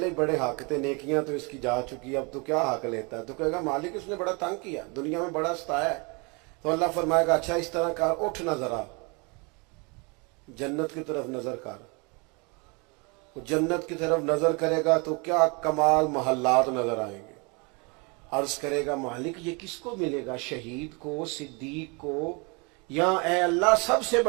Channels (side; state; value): left; quieter; 30.7 dB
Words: ही बड़े हक थे, नेकियां तो इसकी जा चुकी, अब तो क्या हक लेता है? तो कहेगा मालिक उसने बड़ा तंग किया, दुनिया में बड़ा सताया है। तो अल्लाह फरमाएगा अच्छा इस तरह कर, उठ ना जरा जन्नत की तरफ नजर कर। वो जन्नत की तरफ नजर करेगा तो क्या कमाल महल्लात नजर आएंगे। अर्ज करेगा मालिक ये किसको मिलेगा, शहीद को, सिद्दीक को, या ए अल्लाह सबसे